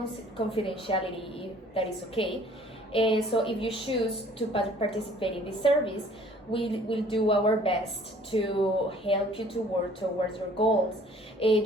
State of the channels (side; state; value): both; normal; correlation 0.55